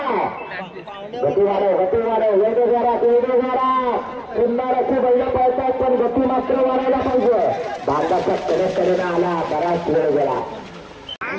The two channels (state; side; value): identical; both; correlation 1.00